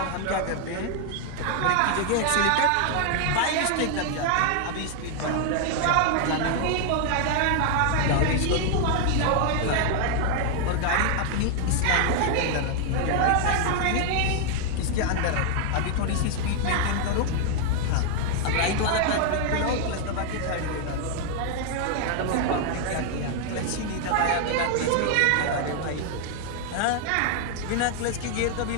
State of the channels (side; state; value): both; different; correlation 0.00